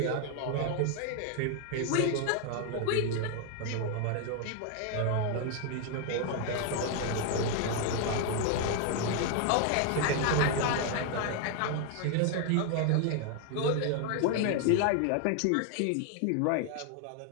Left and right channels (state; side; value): different; both; correlation 0.00